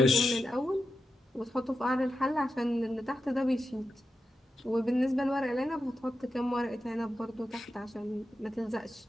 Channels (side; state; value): both; normal; correlation 0.89